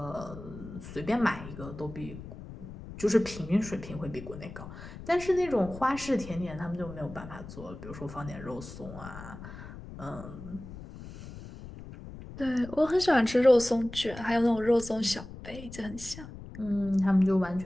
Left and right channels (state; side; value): noise; left; rumble, 13 dB below the sound